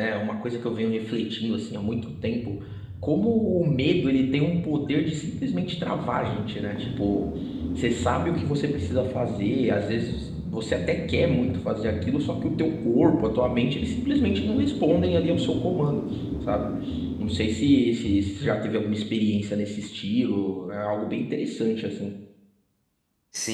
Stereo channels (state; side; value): identical; both; correlation 1.00